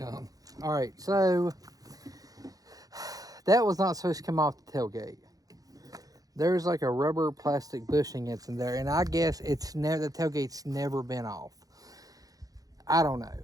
All right, so that was not supposed to come off the tailgate. There's like a rubber plastic bushing that's in there, and I guess the tailgate's never been off. I don't know.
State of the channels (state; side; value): late; left; 0.18 ms